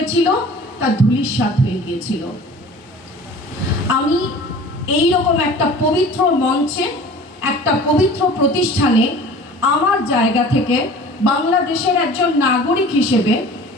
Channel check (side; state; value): both; normal; correlation 0.43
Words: তা ধূলিসাৎ হয়ে গিয়েছিল। আমি এই রকম একটা পবিত্র মঞ্চে, একটা পবিত্র প্রতিষ্ঠানে আমার জায়গা থেকে বাংলাদেশের একজন নাগরিক হিসেবে